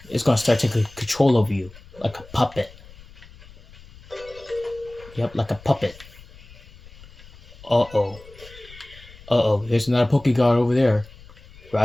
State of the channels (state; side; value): noise; left; rumble, 21 dB below the sound